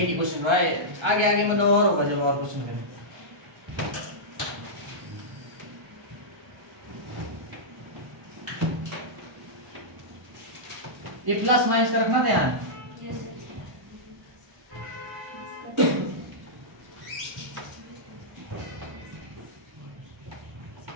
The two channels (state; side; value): late; left; 1.3 ms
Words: ही क्वेश्चन हुआ है, आगे मतलब और होगा जब और क्वेश्चन है। ये प्लस माइनस का रखना ध्यान।